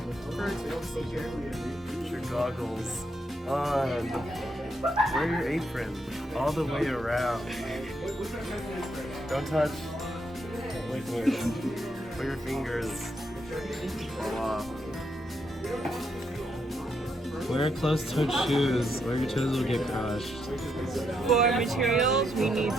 first procedure. Put your goggles on. Wear your apron all the way around. Don't touch liquid. Put your fingers all off. Wear closed-toed shoes or your toes will get crushed. For materials, we need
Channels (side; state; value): both; normal; correlation 0.78